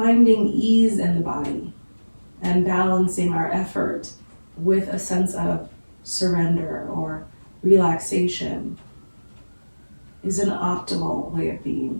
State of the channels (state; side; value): inverted; both; correlation -1.00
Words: ease in the body and balancing our effort with a sense of surrender or relaxation is an optimal way of